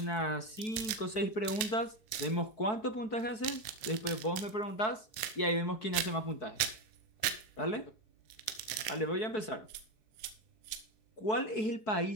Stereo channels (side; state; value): right; late; 4.5 ms